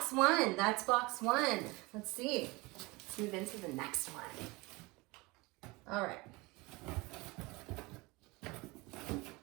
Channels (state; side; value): quieter; left; 24.1 dB